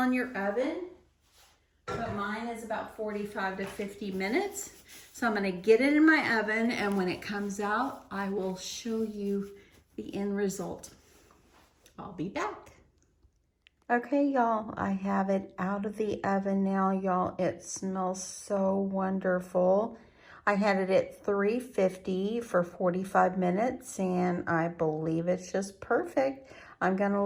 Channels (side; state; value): both; identical; correlation 1.00